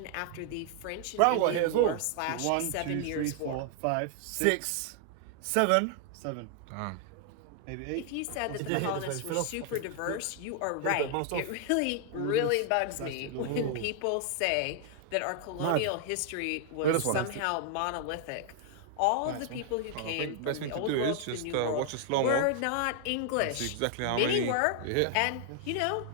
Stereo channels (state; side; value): different; both; correlation 0.00